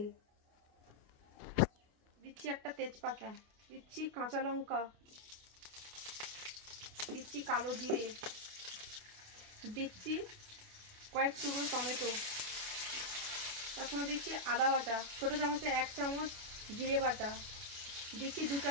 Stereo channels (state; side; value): late; left; 28 ms